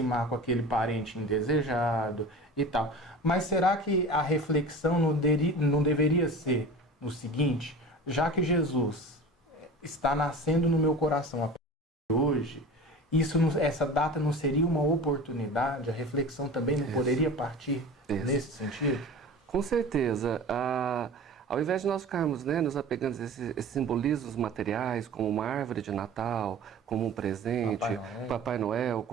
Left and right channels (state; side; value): normal; both; correlation 0.36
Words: com aquele parente indesejado e tal. Mas será que a reflexão não deveria ser o seguinte, já que Jesus está nascendo no meu coração a partir de hoje, essa data não seria uma oportunidade, a reflexão também não poderia partir nesse sentido? Com certeza. Ao invés de nós ficarmos nos apegando a esses simbolismos materiais, como uma árvore de Natal, como um presente, Papai Noel,